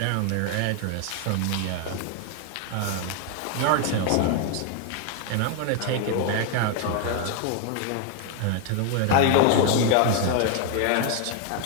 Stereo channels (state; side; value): different; both; correlation 0.00